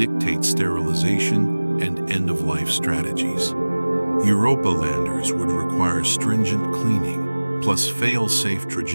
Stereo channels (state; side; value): inverted; both; correlation -1.00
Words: sterilization and end-of-life strategies. Europa landers would require stringent cleaning, plus fail-safe